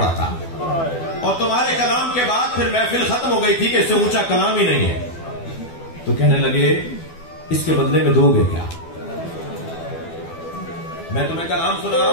था, और तुम्हारे कलाम के बाद फिर महफिल खत्म हो गई थी कि इससे ऊंचा कलाम ही नहीं है, तो कहने लगे इसके बदले में दोगे क्या? मैं तुम्हें कलाम सुना रहा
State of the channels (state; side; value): late; right; 12 ms